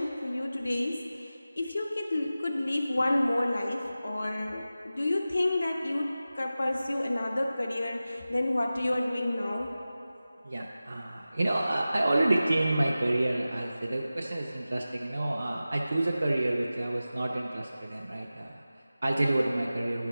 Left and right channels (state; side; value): inverted; both; correlation -0.96